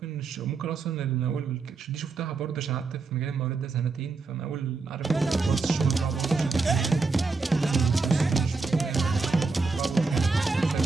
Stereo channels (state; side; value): quieter; left; 4.1 dB